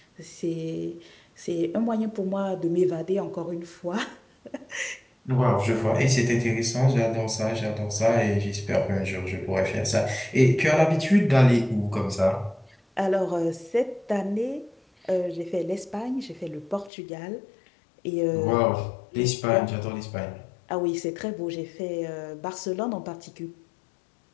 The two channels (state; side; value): drops out; right; at 16.9 s